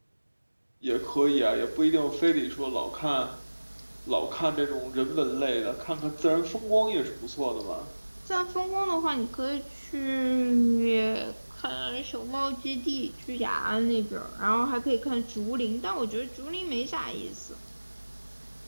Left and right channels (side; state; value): both; inverted; correlation -1.00